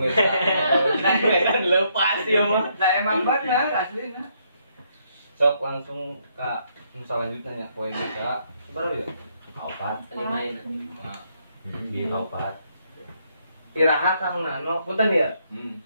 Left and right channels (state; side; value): inverted; both; correlation -0.73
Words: Nah, lepas ya mah. Da emang bener aslina. Sok langsung ke selanjutnya ya poin kita. Berapa ya? Opat, 5 ini. Nah, Di opat. iraha Kang Nano, punten ya. Hmm.